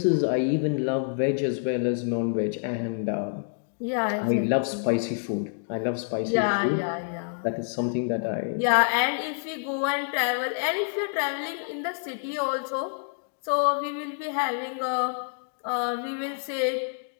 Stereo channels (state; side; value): silent; right; digital silence